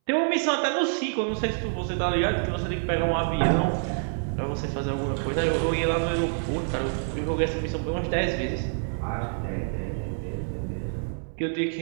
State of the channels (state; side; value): silent; left; 60 dB below the other